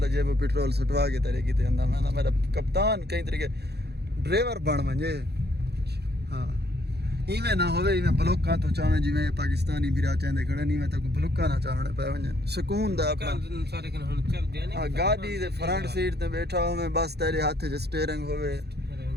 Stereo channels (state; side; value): late; left; 0.48 ms